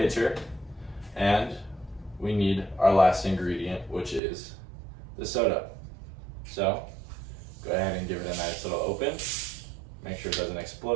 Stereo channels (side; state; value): left; drops out; at 4.2 s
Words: and we need our last ingredient, which is the soda. So go ahead and give it a nice little open. Make sure it doesn't